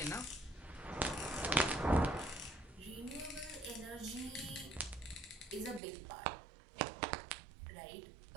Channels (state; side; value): drops out; left; at 5.8 s